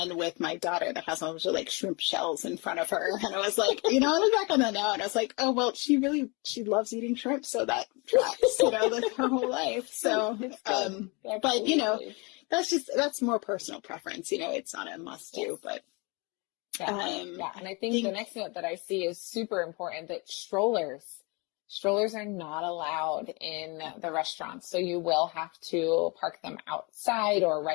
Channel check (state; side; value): quieter; right; 29.2 dB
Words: with my daughter that has a bunch of like shrimp shells in front of her. And I was like, I look back on that now and I was like, oh, well, she loves eating shrimp. So that tracks, like her whole life. So, but that's more personal preference. It's not a must do, but. Yeah. And I think the next note that I see is super important, that strollers are not allowed in the restaurants. So you will have to park them outside or